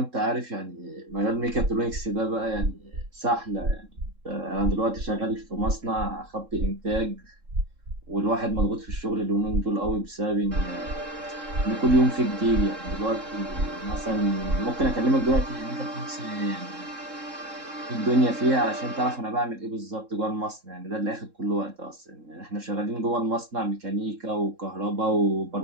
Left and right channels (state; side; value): late; left; 3.7 ms